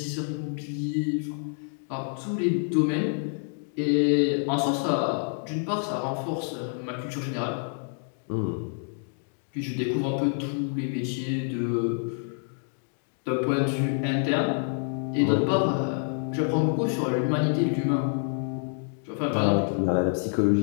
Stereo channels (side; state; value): right; silent; 60 dB below the other